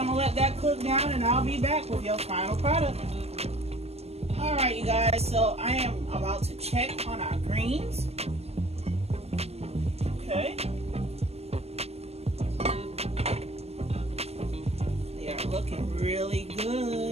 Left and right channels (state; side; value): late; left; 0.30 ms